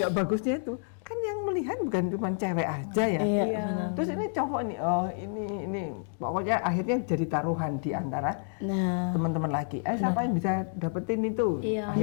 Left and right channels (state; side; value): silent; right; digital silence